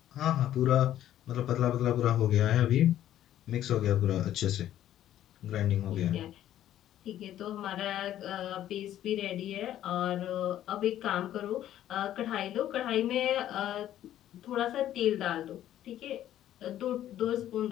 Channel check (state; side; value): quieter; right; 12.1 dB